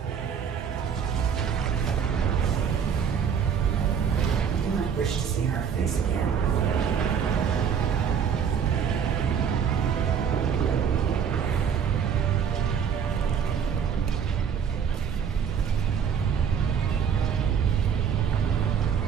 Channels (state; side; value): quieter; left; 7.4 dB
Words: You might wish to see her face again.